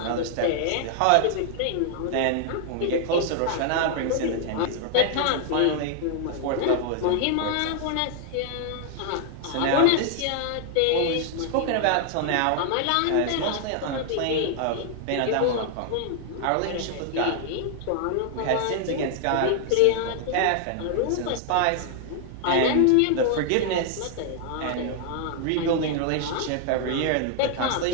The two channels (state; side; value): different; both; correlation 0.00